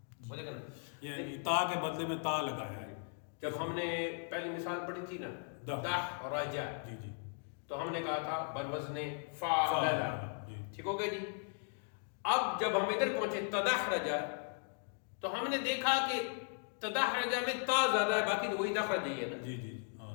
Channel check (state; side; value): silent; right; 53 dB below the other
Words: وہ دیکھنا، یعنی تا کے بدلے میں تا لگایا ہے. جب ہم نے پہلی مثال پڑھی تھی نا دحرج، جی جی، تو ہم نے کہا تھا بروزن فعلل، ٹھیک ہو گیا جی. اب جب ہم ادھر پہنچے تدحرج، تو ہم نے دیکھا کہ تدحرج میں تا زیادہ ہے، باقی تو وہی دحرج ہی ہے نا. جی جی،